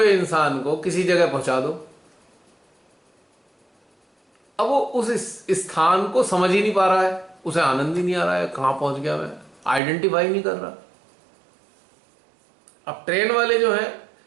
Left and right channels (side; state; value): left; drops out; at 9.8 s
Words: इंसान को किसी जगह पहुंचा दो, अब वो उस स्थान को समझ ही नहीं पा रहा है, उसे आनंद ही नहीं आ रहा है, कहां पहुंच गया मैं, आइडेंटिफाई नहीं कर रहा। अब ट्रेन वाले जो है,